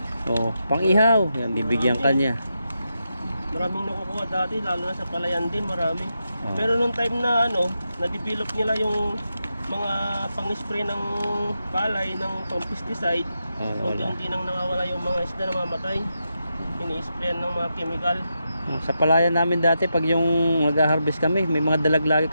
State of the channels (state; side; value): inverted; both; correlation -0.86